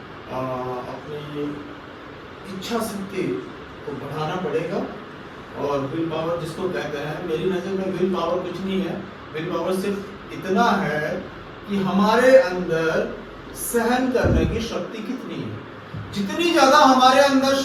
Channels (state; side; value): identical; both; correlation 1.00